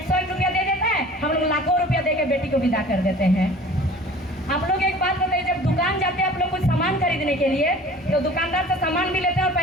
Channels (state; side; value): normal; both; correlation 0.45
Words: रुपया दे देता है, हम लोग लाखों रुपया दे के बेटी को विदा कर देते हैं। आप लोग एक बात बताइए, जब दुकान जाते हैं आप लोग कुछ सामान खरीदने के लिए, तो दुकानदार से सामान भी लेते हैं और